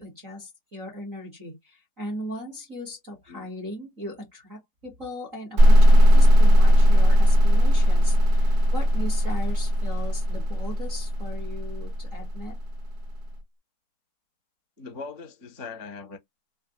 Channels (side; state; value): left; late; 3.9 ms